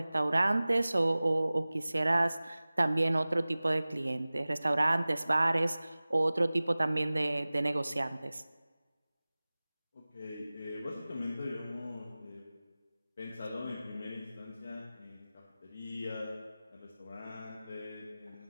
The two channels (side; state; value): both; inverted; correlation -0.98